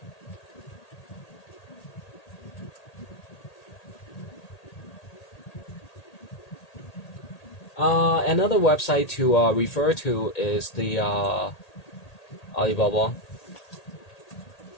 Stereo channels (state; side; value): late; right; 1.8 ms